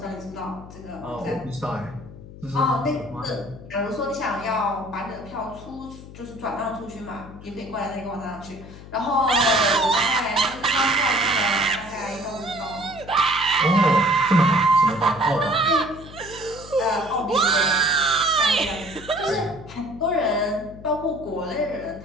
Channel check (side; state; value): left; noise; hum, 16 dB below the sound